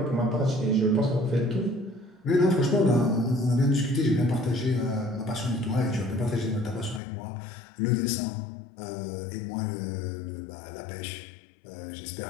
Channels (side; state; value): right; drops out; at 7.0 s